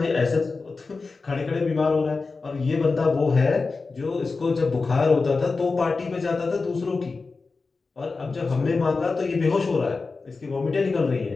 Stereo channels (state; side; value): quieter; right; 4.1 dB